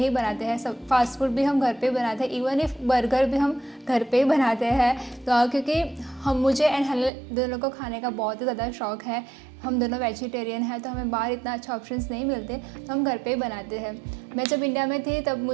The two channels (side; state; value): left; drops out; at 7.1 s